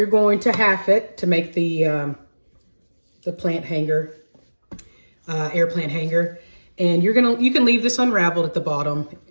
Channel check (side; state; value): both; inverted; correlation -1.00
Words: going to half it to make the plant hanger, air plant hanger, and you can leave this unraveled at the bottom.